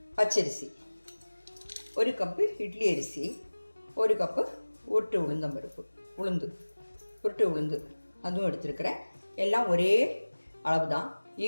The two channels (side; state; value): both; inverted; correlation -1.00